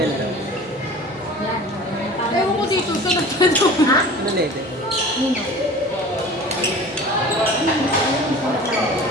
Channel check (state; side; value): normal; both; correlation 0.41